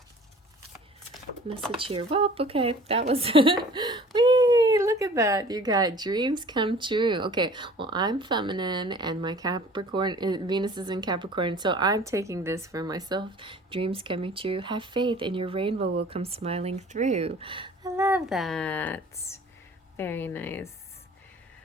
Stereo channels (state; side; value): normal; both; correlation 0.48